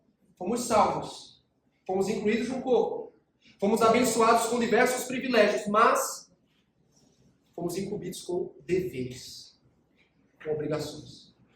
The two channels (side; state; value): both; identical; correlation 1.00